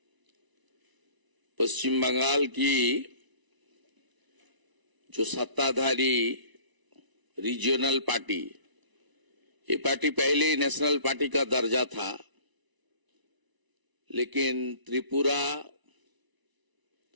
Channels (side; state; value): left; late; 1.0 ms